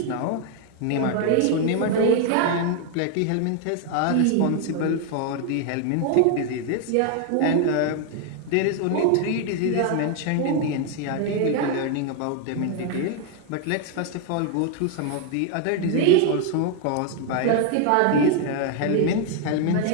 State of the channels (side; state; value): both; different; correlation 0.00